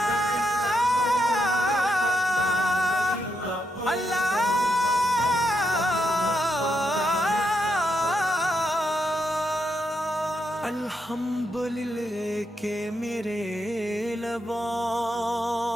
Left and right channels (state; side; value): normal; both; correlation 0.80